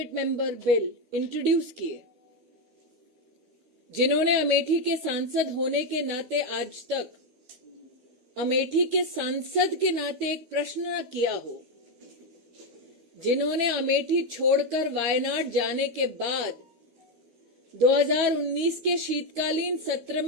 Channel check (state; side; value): late; left; 12 ms